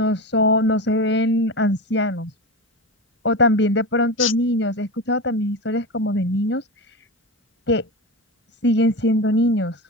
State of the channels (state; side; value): normal; both; correlation 0.22